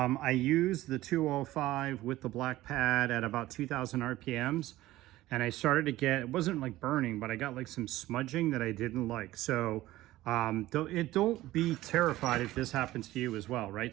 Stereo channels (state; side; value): quieter; left; 16.4 dB